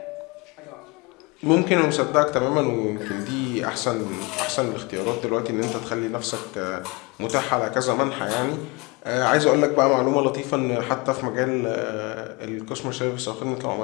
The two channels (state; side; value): quieter; right; 27.2 dB